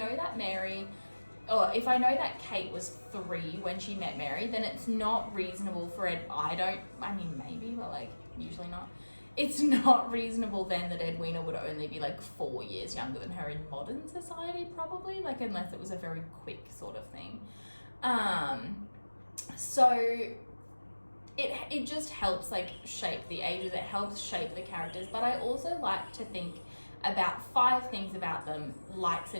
that Mary, or if I know that Kate was 3 when she met Mary, then it's not reasonable for it. I mean, maybe, but like, usually not. It's not reasonable then that Edwina would only be like 4 years younger than her in modern society, probably, like, unless it was a very quick sort of thing. So it just helps like shape the ages, it helps shape the characters. But I also like to think about 5 things about them, likes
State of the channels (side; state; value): both; inverted; correlation -1.00